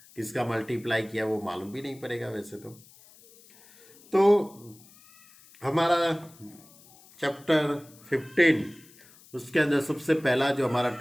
किसका मल्टीप्लाई किया, वो मालूम भी नहीं पड़ेगा वैसे तो हमारा चैप्टर 15 उसके अंदर सबसे पहला जो हमारा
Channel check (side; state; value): left; noise; hiss, 25 dB below the sound